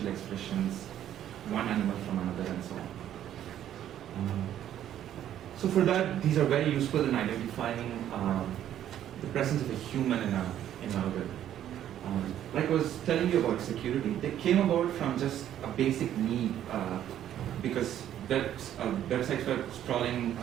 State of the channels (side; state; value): left; quieter; 11.1 dB